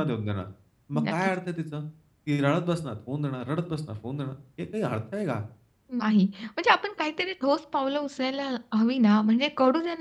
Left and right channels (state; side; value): identical; both; correlation 1.00